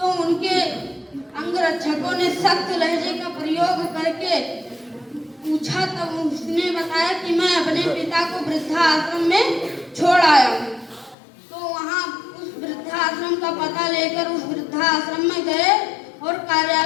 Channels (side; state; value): right; drops out; at 11.2 s